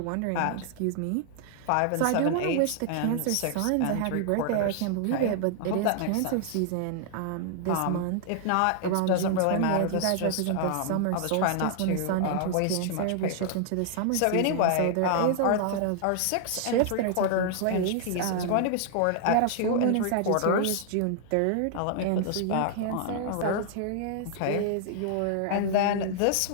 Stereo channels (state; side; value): different; both; correlation 0.00